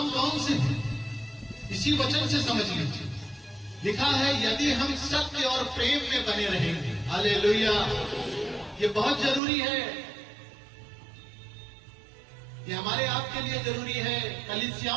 कौन से हैं? इसी वचन से समझ लीजिए। लिखा है, यदि हम सत्य और प्रेम में बने रहेंगे। हालेलुया। ये बहुत जरूरी है। ये हमारे आपके लिए जरूरी है,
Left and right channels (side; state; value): left; drops out; at 9.4 s